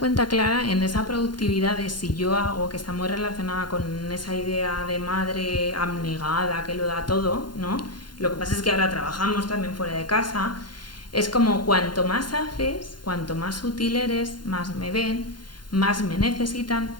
Clara, en esa productividad de si yo hago, que está muy relacionada con esa idea de madre abnegada que lo da todo, ¿no? Lo que pasa es que ahora trabajamos también fuera de casa. Es como cuanto más haces, cuanto más útil eres, más me ven, más me necesitan,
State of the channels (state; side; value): late; right; 0.71 ms